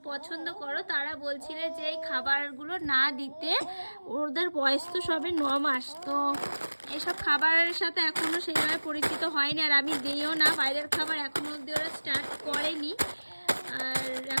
পছন্দ করো তারা বলছিলে যে এই খাবারগুলো না দিতে, ওদের বয়স তো সবে 9 মাস, তো এসব খাবারের সাথে এখনো সেইভাবে পরিচিত হয়নি, আর আমি দিইও না বাইরের খাবার এখনো অব্দি ওরা স্টার্ট করেনি, আর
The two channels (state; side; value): inverted; both; correlation -1.00